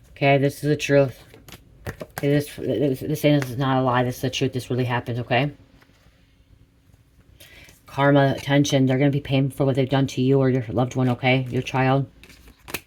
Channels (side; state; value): both; identical; correlation 1.00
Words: Okay, this is the truth. Okay, this is not a lie. This is the truth. This really happened, okay? Karma, attention. They're going to be paying for what they've done to you or your loved one, okay? Your child.